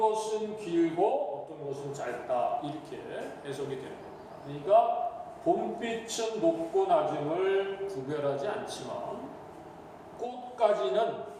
길고 어떤 것은 짧다 이렇게 해석이 되는 겁니다. 그러니까 봄빛은 높고 낮음을 구별하지 않지만 꽃가지는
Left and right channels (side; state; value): both; identical; correlation 1.00